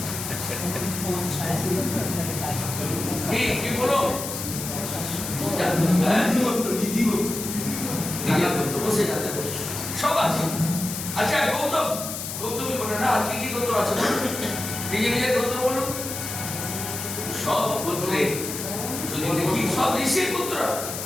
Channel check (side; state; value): left; noise; hiss, 6 dB below the sound